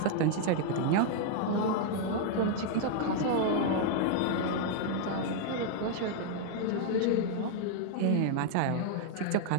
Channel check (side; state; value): both; different; correlation 0.00